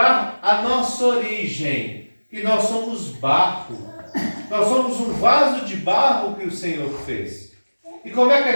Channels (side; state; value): both; inverted; correlation -1.00